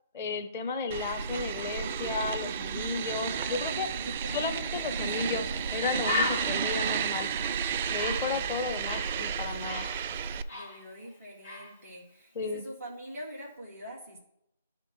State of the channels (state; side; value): inverted; both; correlation -0.44